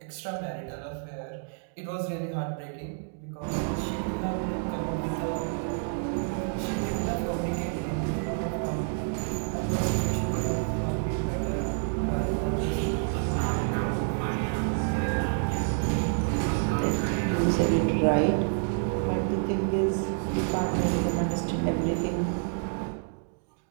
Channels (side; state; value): left; silent; 59 dB below the other